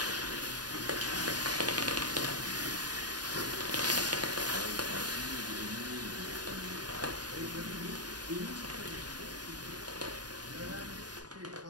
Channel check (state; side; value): late; left; 0.69 ms